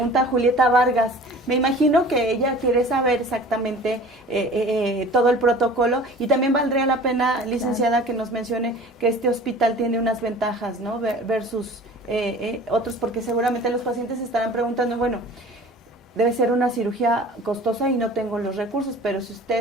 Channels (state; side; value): normal; both; correlation 0.44